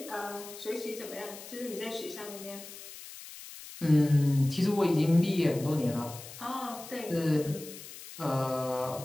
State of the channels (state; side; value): noise; left; hiss, 14 dB below the sound